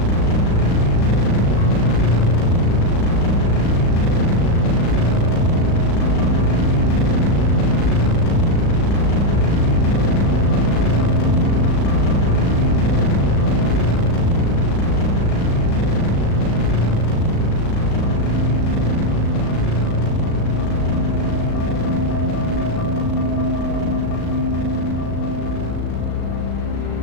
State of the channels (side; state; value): right; late; 36 ms